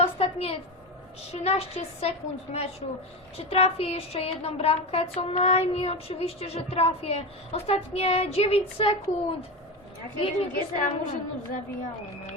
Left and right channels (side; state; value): both; normal; correlation 0.20